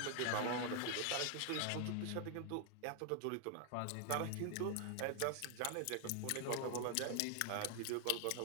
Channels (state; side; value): different; both; correlation 0.00